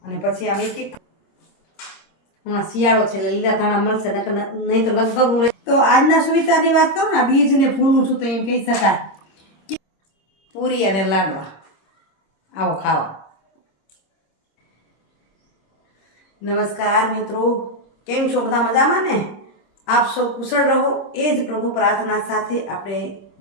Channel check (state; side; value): late; right; 26 ms